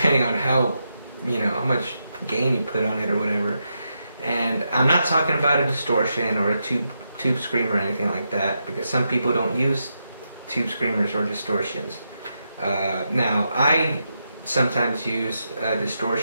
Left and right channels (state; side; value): inverted; both; correlation -0.84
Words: on how, how much gain you put on it or whatever. And I'm not talking about a distortion or a tube screamer or anything like that, because some people don't use tube screamers or distortions. Now, I sometimes use